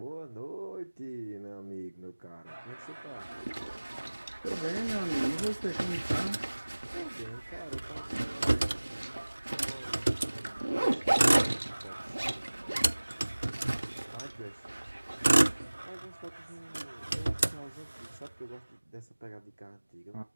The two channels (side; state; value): both; inverted; correlation -1.00